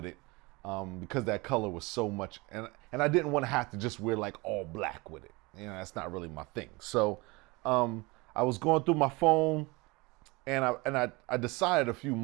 it because that color was so much. And I didn't want to have to just wear like all black with it. That's not really my thing. So I was going through my phone and I decided a few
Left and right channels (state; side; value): quieter; left; 24.7 dB